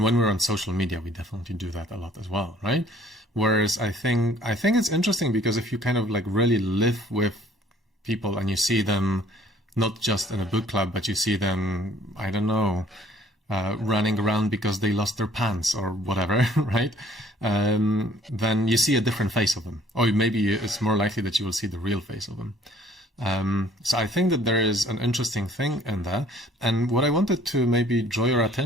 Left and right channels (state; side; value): normal; both; correlation 0.57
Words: when we're on social media, we definitely do that a lot as well, right? Whereas I think it's interesting because if you kind of like really live with people and you see them not just in a book club, but you see them, I don't know, running around because they lost their pants or whatever, right? Then you see a different face of them. Or maybe it's more likely that you will see the real face of them. So I think that there is an interesting thing in that. And what I wanted to maybe draw your